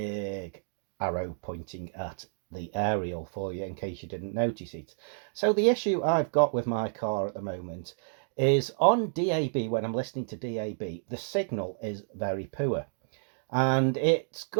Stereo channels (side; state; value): left; silent; digital silence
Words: arrow pointing at the aerial for you in case you didn't notice it. So the issue I've got with my car at the moment is on DAB. When I'm listening to DAB, the signal is very poor, and it's